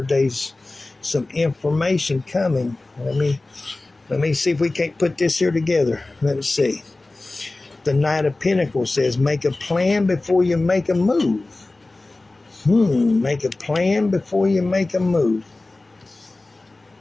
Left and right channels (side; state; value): right; quieter; 3.1 dB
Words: There's some information coming. Let me see if we can't put this here together. Let's see. The Knight of Pentacles says, make a plan before you make a move. Make a plan before you make a move.